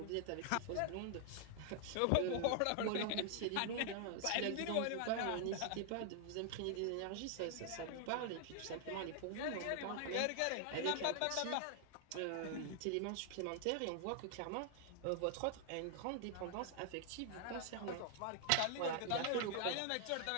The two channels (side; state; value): both; different; correlation 0.00